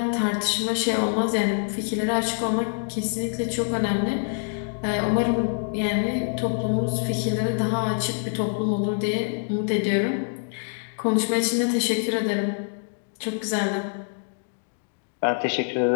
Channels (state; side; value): silent; right; digital silence